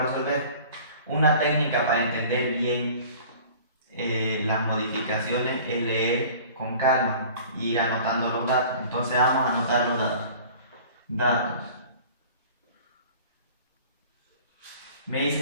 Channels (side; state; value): both; inverted; correlation -0.46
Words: resolver. Una técnica para entender bien las modificaciones es leer con calma y ir anotando los datos. Entonces vamos a anotar los datos. Datos. Me